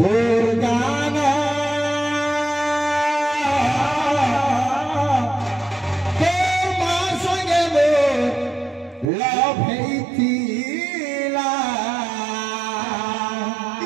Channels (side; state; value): left; drops out; at 9.1 s